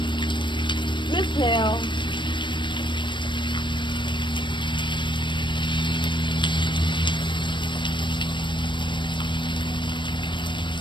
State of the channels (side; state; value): right; late; 0.23 ms